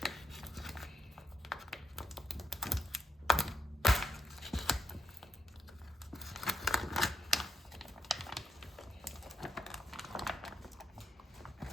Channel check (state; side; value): normal; both; correlation 0.78